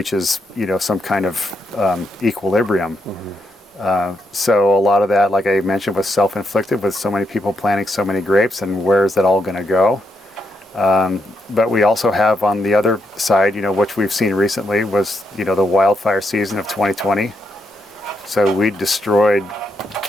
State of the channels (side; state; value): both; normal; correlation 0.80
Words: some kind of equilibrium. So a lot of that, like I mentioned, was self-inflicted with so many people planting so many grapes, and where's that all going to go? But we also have on the other side, which we've seen recently was, the wildfire season of 2020. So we destroyed,